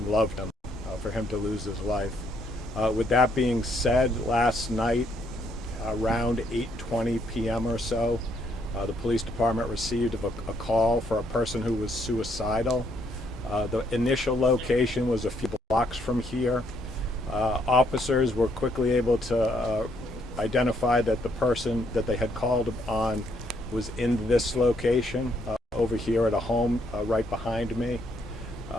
loved him, for him to lose his life. With that being said, last night around 8:20 p.m. or so, the police department received a call for a person who was suicidal. The initial location was a few blocks from here. Officers were quickly able to identify that the person that they had called on was in this location over here at a home right behind me.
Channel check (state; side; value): normal; both; correlation 0.71